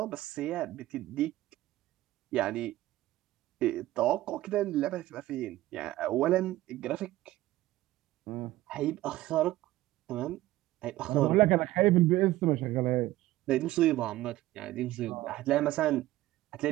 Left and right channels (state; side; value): quieter; left; 16.2 dB